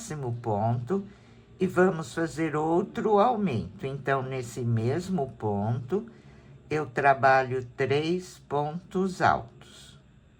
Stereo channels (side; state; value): both; identical; correlation 1.00